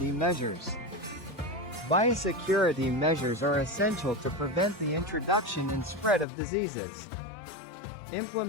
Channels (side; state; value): right; drops out; at 6.2 s